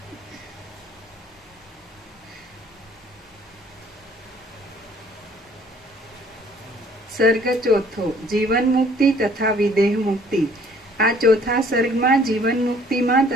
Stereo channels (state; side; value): normal; both; correlation 0.58